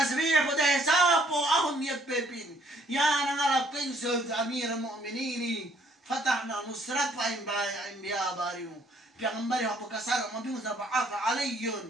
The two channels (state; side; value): normal; both; correlation 0.64